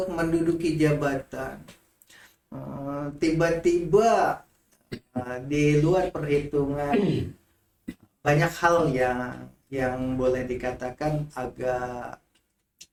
menduduki jabatan. Tiba-tiba di luar perhitungan banyak hal yang boleh dikatakan agak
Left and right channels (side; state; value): both; identical; correlation 1.00